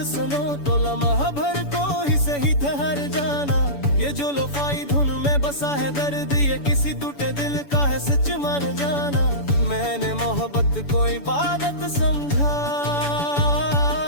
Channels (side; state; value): right; late; 7.0 ms